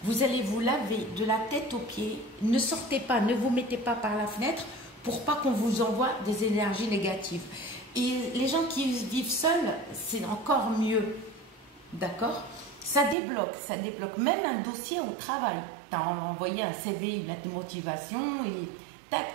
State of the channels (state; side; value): drops out; left; at 13.2 s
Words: Vous allez vous laver de la tête aux pieds. Ne sortez pas, ne vous mettez pas par la fenêtre pour pas qu'on vous envoie des énergies négatives. Et les gens qui vivent seuls, c'est encore mieux. D'accord? Ça débloque même un dossier au travail. Tu as envoyé un CV, une lettre de motivation, et tac,